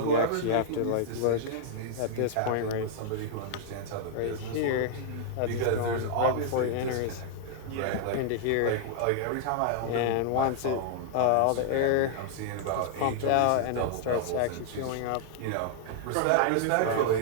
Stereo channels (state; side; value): different; both; correlation -0.01